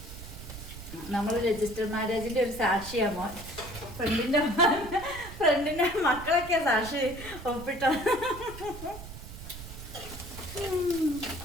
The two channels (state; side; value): noise; right; rumble, 13 dB below the sound